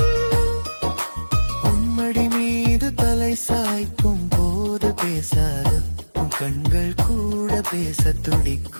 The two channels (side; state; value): both; inverted; correlation -1.00